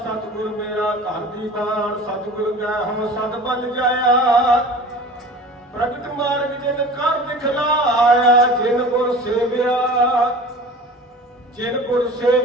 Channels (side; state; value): both; normal; correlation 0.40